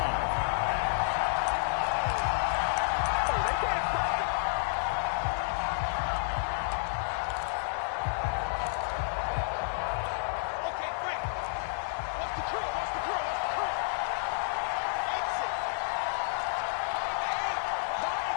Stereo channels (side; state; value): right; silent; digital silence